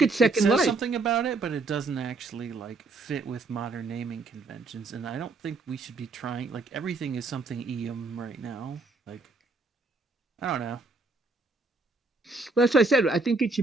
at Second It says Life. something about it, but it doesn't actually like fit with modern naming conventions, and I don't think we should be trying. Like everything is something right now. Like I don't know. Well, that's what I said. I think it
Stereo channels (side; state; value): left; quieter; 3.5 dB